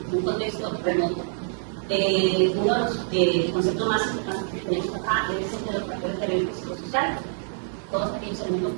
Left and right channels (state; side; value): silent; left; 61 dB below the other